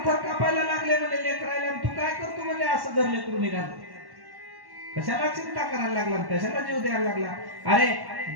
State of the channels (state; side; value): late; left; 1.1 ms